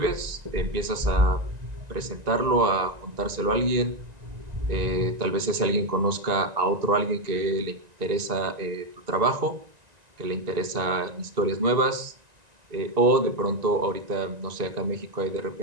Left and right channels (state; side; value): late; left; 1.9 ms